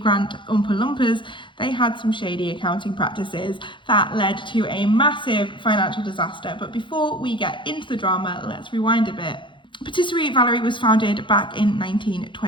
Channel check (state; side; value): late; right; 0.23 ms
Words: Oompa Loompas, they had some shady accounting practices that led to a massive financial disaster. But before we get into the drama, let's rewind a bit. Patisserie Valerie was founded back in